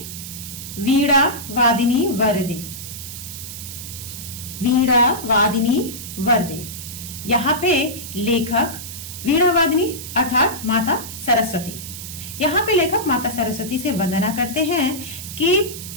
वीणा वादिनी वरदे। वीणा वादिनी वरदे। यहाँ पे लेखक वीणा वादिनी अर्थात माता सरस्वती, यहाँ पे लेखक माता सरस्वती से वंदना करते हैं कि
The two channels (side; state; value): right; noise; hiss, 10 dB below the sound